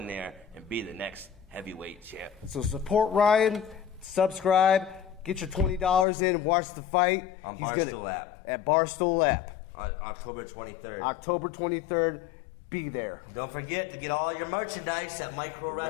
there and be the next heavyweight champ. So support Ryan, subscribe, get your $20 in, watch the fight. On Barstool app. At Barstool app. On October 23rd. October 23rd, be there. Don't forget to get all your merchandise at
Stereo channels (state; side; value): drops out; right; at 6.1 s